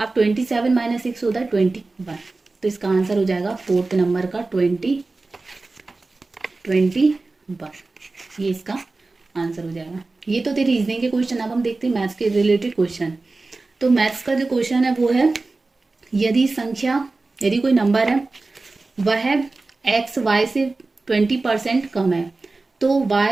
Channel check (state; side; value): quieter; left; 3.5 dB